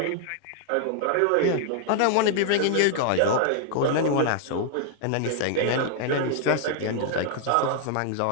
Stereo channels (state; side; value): different; both; correlation 0.00